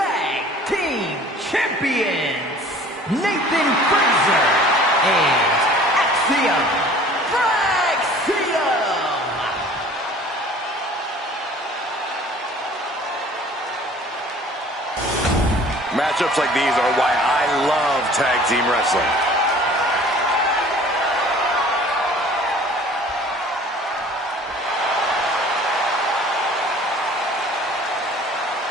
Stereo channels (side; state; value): both; normal; correlation 0.49